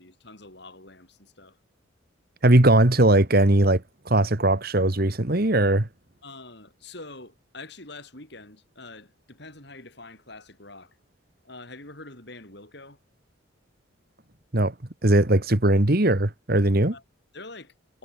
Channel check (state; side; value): normal; both; correlation 0.49